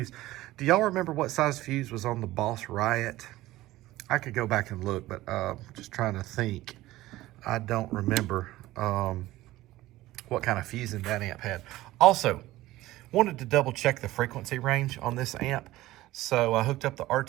Do y'all remember what size fuse was on the Boss Riot? I could go back and look, but just trying to think. I don't remember what kind of fusing that amp had. Also, wanted to double check the frequency range on this amp. So I hooked up the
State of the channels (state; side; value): quieter; left; 16.9 dB